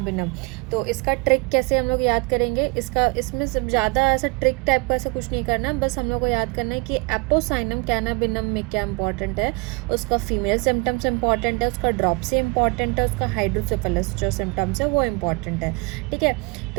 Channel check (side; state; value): left; quieter; 27.6 dB